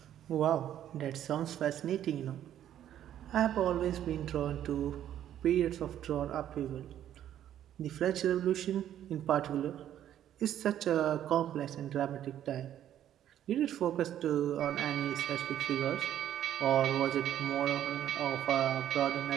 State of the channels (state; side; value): quieter; left; 11.1 dB